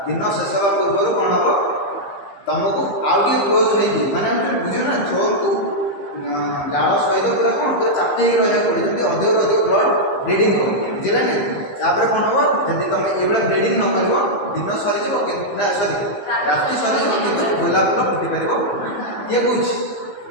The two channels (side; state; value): right; late; 15 ms